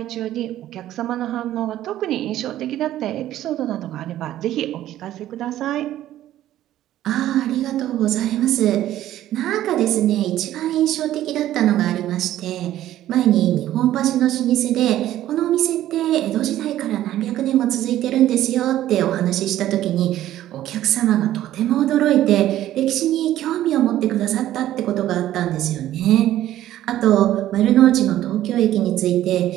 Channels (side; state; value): left; quieter; 13.2 dB